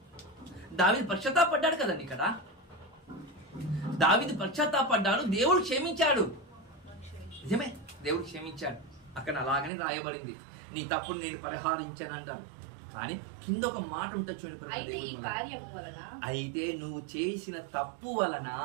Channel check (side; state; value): left; drops out; at 9.7 s